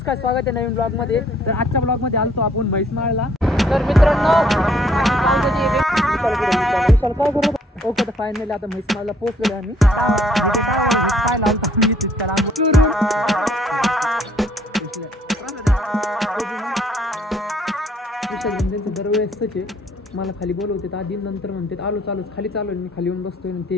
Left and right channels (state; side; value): normal; both; correlation 0.63